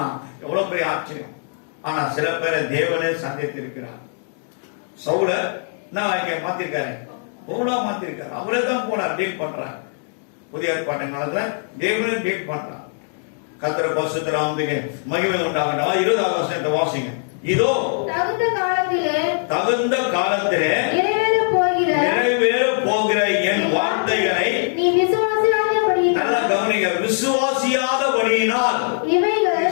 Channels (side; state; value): right; silent; digital silence